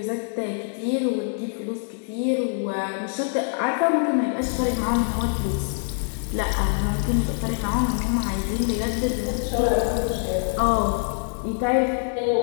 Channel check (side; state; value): right; silent; 57 dB below the other